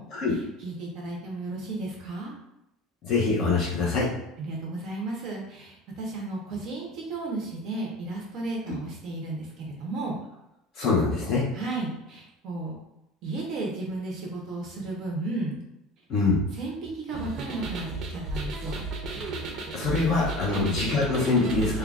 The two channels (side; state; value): both; normal; correlation 0.35